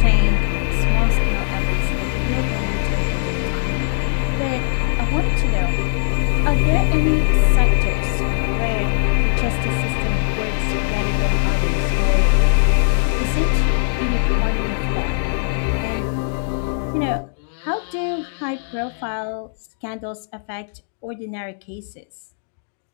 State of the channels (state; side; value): silent; right; digital silence